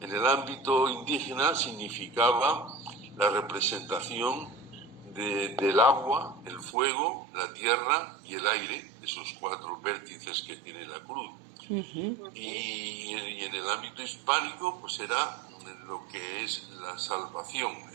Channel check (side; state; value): left; drops out; at 6.8 s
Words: el ámbito indígena significaba la representación del agua, el fuego, la tierra y el aire, esos cuatro vértices que tiene la cruz. Y en el ámbito hispánico, pues era lo que es la salvación,